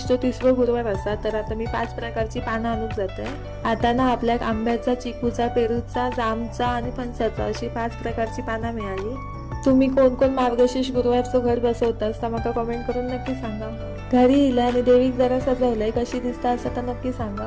30वा गुरुवार असा, तर आता मी 5 प्रकारची पानं आणून जातोय। आता ना आपल्या आंब्याचा, चिकूचा, पेरूचा, जामचा आणि फणसाचा अशी 5 प्रकारची पानं मिळाली। तुम्ही कोण कोण मार्गशीर्ष गुरुवारचं घर बसवतास तर मला कमेंट करून नक्की सांगा। घरी इला आणि देवीक जरा सजवलंय, कशी दिसता असं तर नक्की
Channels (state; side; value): identical; both; correlation 1.00